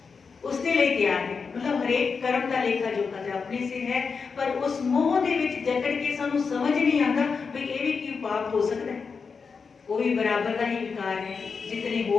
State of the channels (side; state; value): right; quieter; 5.3 dB